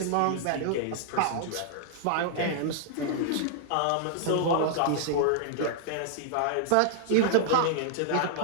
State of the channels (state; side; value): different; both; correlation -0.01